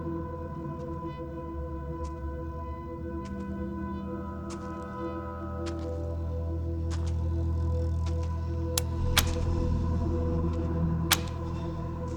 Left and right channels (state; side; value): identical; both; correlation 1.00